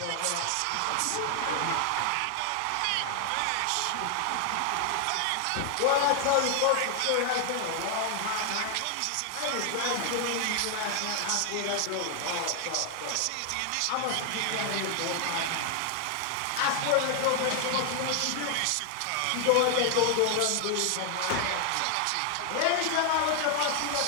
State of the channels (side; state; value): both; different; correlation 0.00